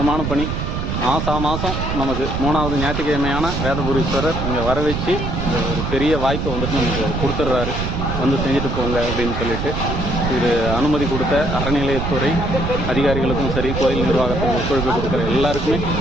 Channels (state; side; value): noise; right; rumble, 2 dB below the sound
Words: பணி. மாதம் நமக்கு 3வது ஞாயிற்றுக்கிழமையான வேதபுரீஸ்வரர் இங்கே வர வச்சு இந்த ஒரு பெரிய வாய்ப்பை வந்துட்டு நமக்கு கொடுத்துட்றாரு. வந்து செஞ்சுட்டு போங்க அப்படின்னு சொல்லிட்டு இது அனுமதி கொடுத்த அறநிலையத்துறை அதிகாரிகளுக்கும் சரி, கோயில் நிர்வாகத்துக்கு ஒத்துழைப்பு கொடுக்குற எல்லாருக்குமே